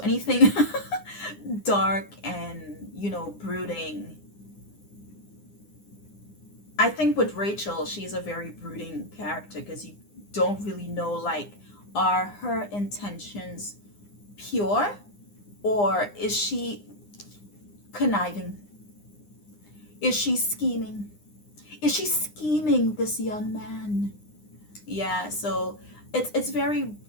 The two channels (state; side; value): late; right; 9.8 ms